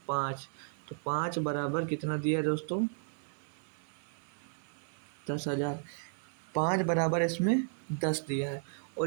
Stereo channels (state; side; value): silent; left; 55 dB below the other